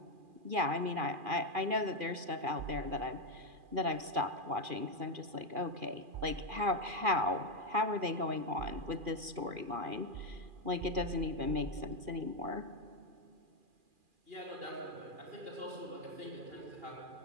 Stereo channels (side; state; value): left; late; 2.4 ms